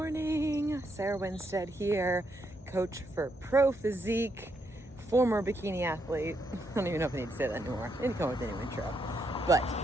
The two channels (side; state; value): both; normal; correlation 0.78